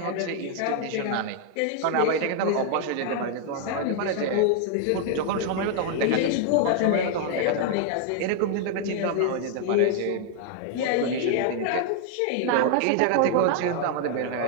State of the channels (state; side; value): different; both; correlation 0.00